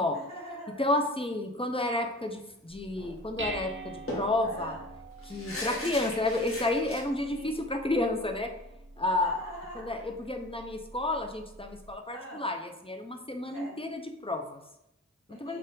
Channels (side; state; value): both; normal; correlation 0.40